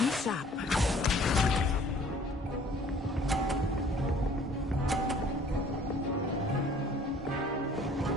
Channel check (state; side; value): normal; both; correlation 0.54